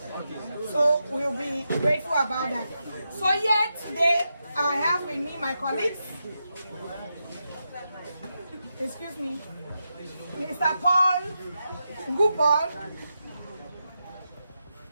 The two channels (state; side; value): inverted; both; correlation -0.86